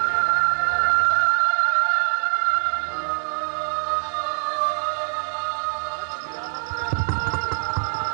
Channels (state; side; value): silent; left; digital silence